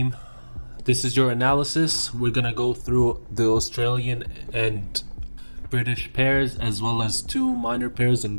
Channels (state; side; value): inverted; both; correlation -1.00